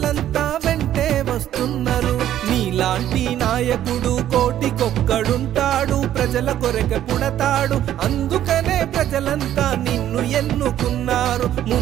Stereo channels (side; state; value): left; quieter; 11.7 dB